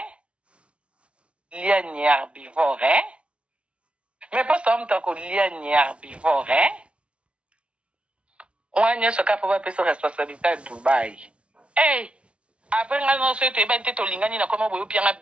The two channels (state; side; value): late; left; 0.059 ms